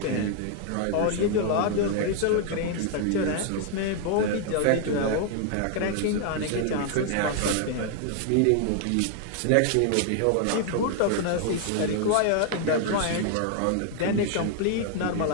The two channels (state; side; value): different; both; correlation 0.00